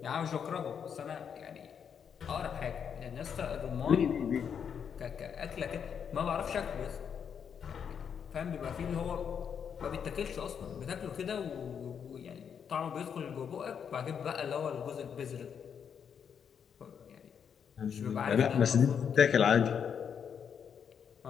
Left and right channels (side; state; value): right; quieter; 7.5 dB